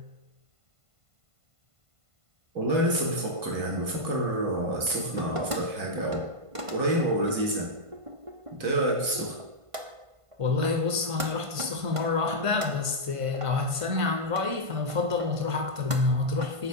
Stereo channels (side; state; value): left; late; 1.5 ms